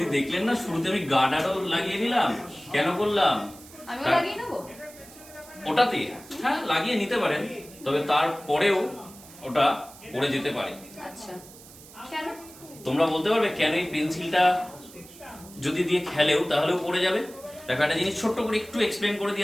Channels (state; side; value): noise; right; hiss, 20 dB below the sound